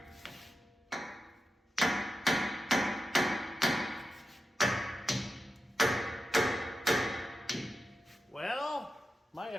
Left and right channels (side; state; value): both; normal; correlation 0.91